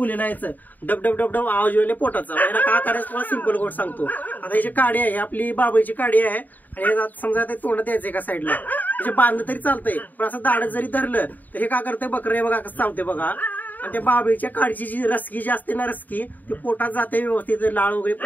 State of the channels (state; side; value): late; right; 0.085 ms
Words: आहे। डब डब डब डब आवाज येईल पोटाचा। याला काय करायचं तुम्हाला सिंपल गोष्ट सांगतो। आता याची काडी आहे, आपली बाबळीची काडी आहे, आणि समजा ते तोंडात द्यायचं एका साईडला, म्हणजे बांधलं तरी चालतंय, पण असं दाढत जरी धरलं तर हे काय करतंय, बकरे बघा कसं चावते बघा। आणि त्या बाबळीच्या काडीची जी रसकी जी असते ना, रसकी ती पोटात जाते व्यवस्थित, लाळ वगैरे